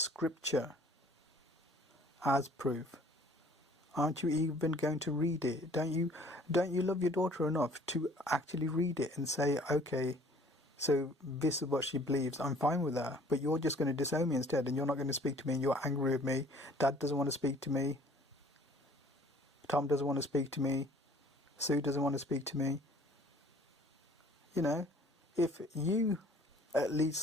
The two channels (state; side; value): normal; both; correlation 0.54